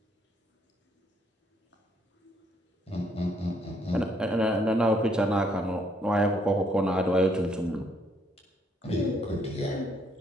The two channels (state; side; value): normal; both; correlation 0.69